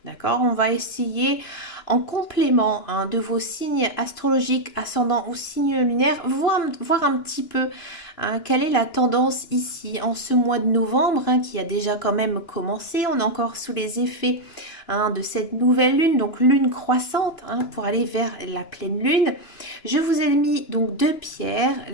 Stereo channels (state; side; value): late; right; 2.9 ms